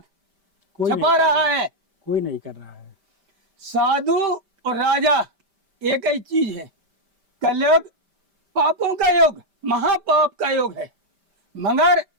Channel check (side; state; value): left; late; 5.1 ms